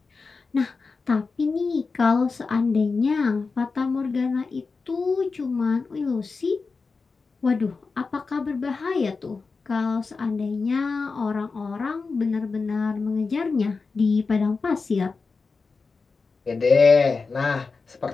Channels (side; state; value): right; quieter; 4.4 dB